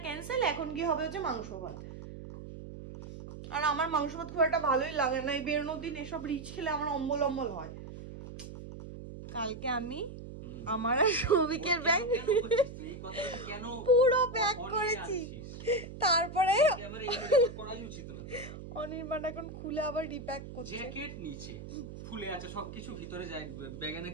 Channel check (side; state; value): right; noise; hum, 12 dB below the sound